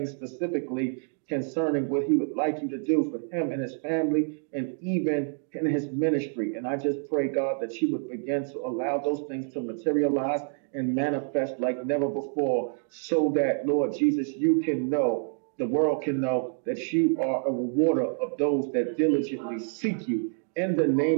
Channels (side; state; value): left; silent; 60 dB below the other